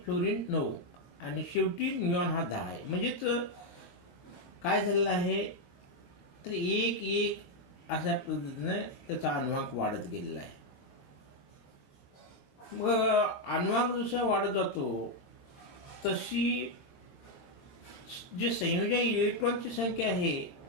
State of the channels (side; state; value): right; late; 22 ms